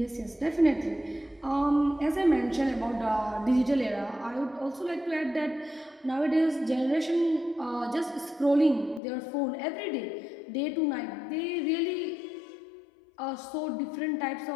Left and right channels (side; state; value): right; drops out; at 9.0 s